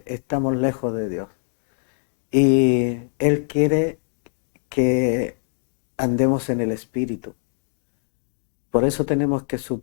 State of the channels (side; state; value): right; silent; digital silence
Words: estamos lejos de Dios. Y Él quiere que andemos en el Espíritu. Por eso tenemos que